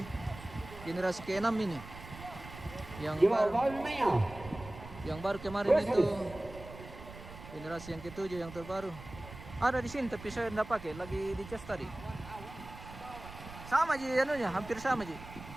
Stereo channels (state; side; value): noise; right; rumble, 15 dB below the sound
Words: generasi ke-6 ini. Yang baru kemarin itu generasi yang ke-7 yang terbaru. Ada di sini tapi saya tidak pakai, lagi dicas tadi. Sama aja anunya, hampir sama aja.